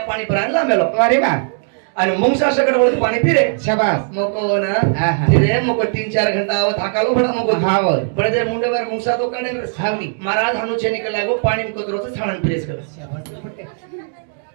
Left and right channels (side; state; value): left; silent; 57 dB below the other